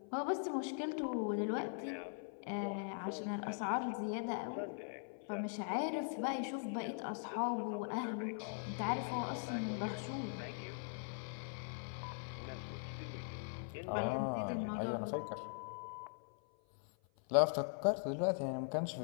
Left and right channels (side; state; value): right; silent; 50 dB below the other